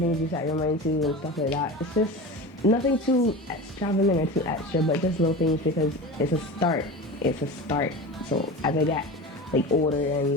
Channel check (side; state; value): both; normal; correlation 0.30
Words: things you set your mind to and stuff like that. It's just nothing too extravagant or too extra, but just little things because it's a start. It's a start. So as I get like older